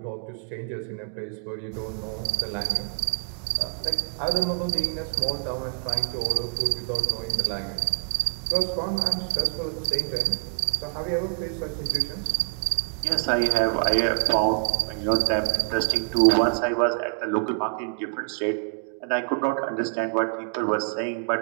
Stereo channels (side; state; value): left; silent; 61 dB below the other